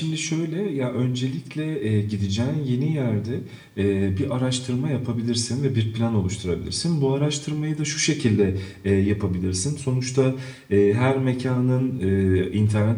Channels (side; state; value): both; identical; correlation 1.00